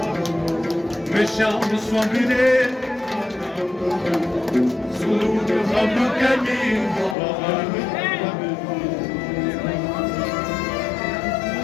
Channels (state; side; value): drops out; right; at 7.2 s